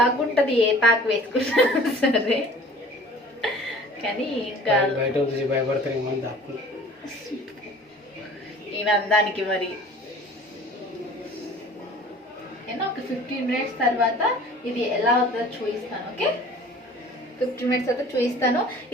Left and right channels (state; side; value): normal; both; correlation 0.46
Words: ఉంటుంది ఏ ప్యాక్ వేసుకున్నా సరే. కానీ ఇంకా భయపడతారు ఈయన అందానికి. మరి నేను ఒక 15 minutes తర్వాత ఇది ఎలా అవుతుందో చూపిస్తాను. ఓకే, 15 minutes అయితే చూపిస్తాను.